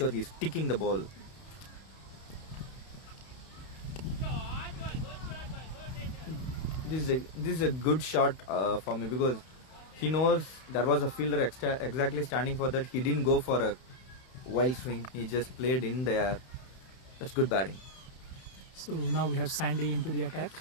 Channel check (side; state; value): right; late; 31 ms